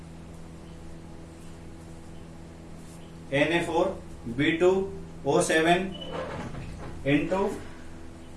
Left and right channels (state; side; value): identical; both; correlation 1.00